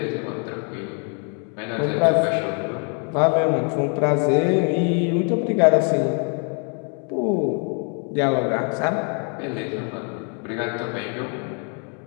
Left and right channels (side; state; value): right; quieter; 39.1 dB